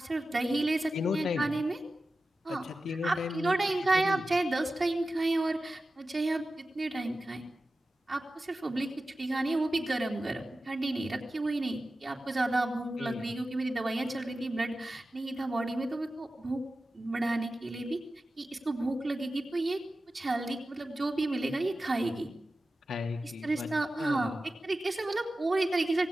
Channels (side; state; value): both; normal; correlation 0.94